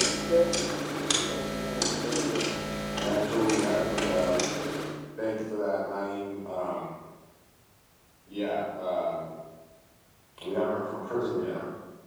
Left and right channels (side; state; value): both; identical; correlation 1.00